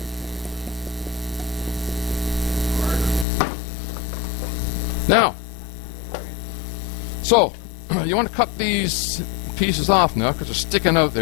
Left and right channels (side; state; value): right; drops out; at 3.2 s